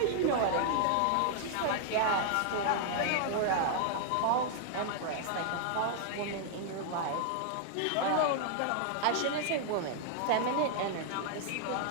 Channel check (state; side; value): different; both; correlation 0.00